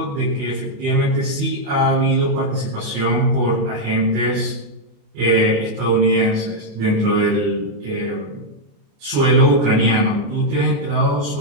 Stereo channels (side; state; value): left; late; 28 ms